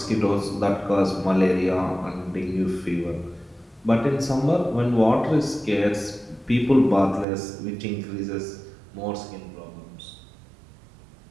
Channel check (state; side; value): drops out; left; at 7.2 s